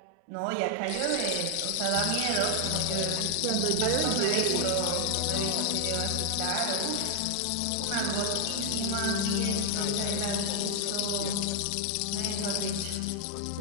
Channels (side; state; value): both; different; correlation 0.00